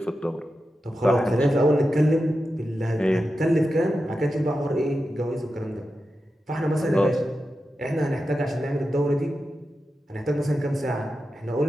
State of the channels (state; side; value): normal; both; correlation 0.91